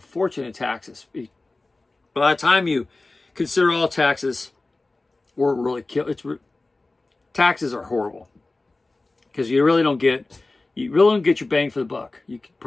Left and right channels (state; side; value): quieter; right; 3.2 dB